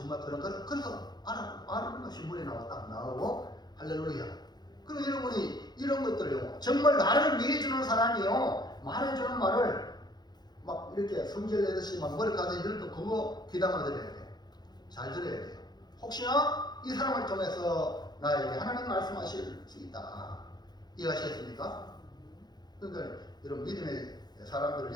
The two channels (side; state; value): right; late; 0.20 ms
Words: 그런 걸 그래서 아는 것이 물에 나오고 할렐루야. 그럼 여러분이 이런 것들요, 정말 나를 위해 주는 사람이요, 말해주는 말을 막 이렇게 성질 내듯이 막 머리카락에 이럴 때 그거 귀담아 들어야 돼요. 잘 들어야 돼요. 혹시나 이 사람을 통해서 나에게 하나님 말씀하실 수 있다. 이해하시겠습니까? 그러니까 여러분 믿음의 사람들을